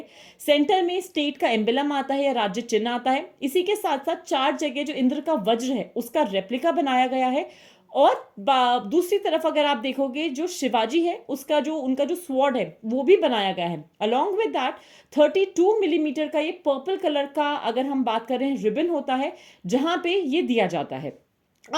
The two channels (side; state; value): both; identical; correlation 1.00